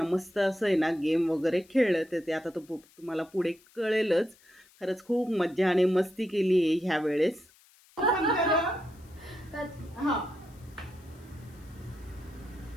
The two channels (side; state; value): left; noise; hiss, 28 dB below the sound